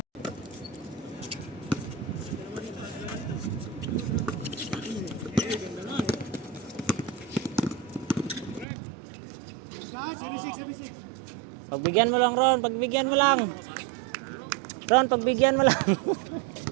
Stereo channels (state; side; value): drops out; left; at 8.7 s